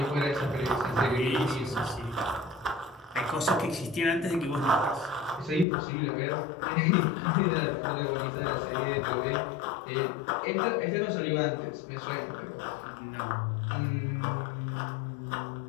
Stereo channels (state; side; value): drops out; right; at 5.7 s